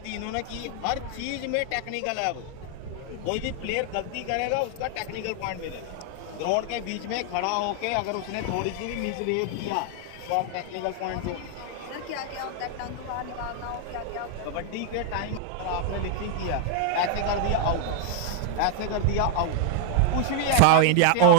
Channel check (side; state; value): both; different; correlation 0.00